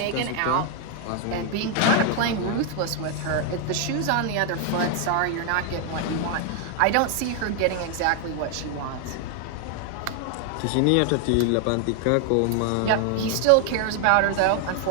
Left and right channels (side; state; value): both; different; correlation 0.00